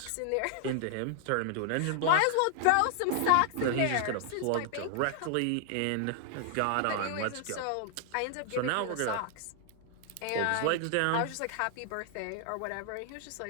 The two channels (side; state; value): both; different; correlation 0.00